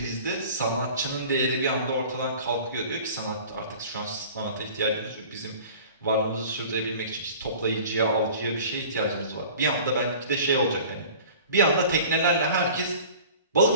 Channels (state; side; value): inverted; both; correlation -0.43